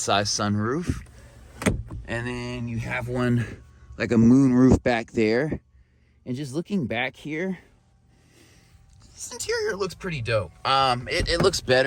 sunroof. And then you have one like a moon roof back there. And just looking back here, this interior looks pretty dope. It looks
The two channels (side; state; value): both; identical; correlation 1.00